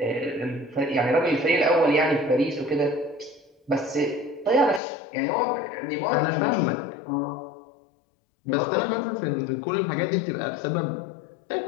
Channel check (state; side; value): drops out; right; at 4.8 s